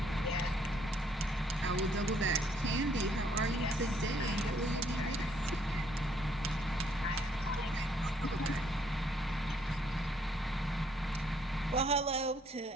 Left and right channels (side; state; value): both; normal; correlation 0.68